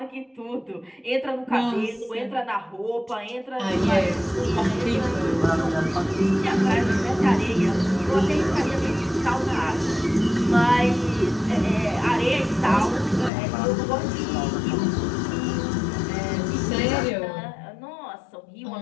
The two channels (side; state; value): right; drops out; at 13.3 s